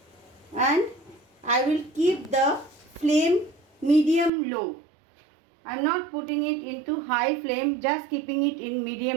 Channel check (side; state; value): left; drops out; at 4.3 s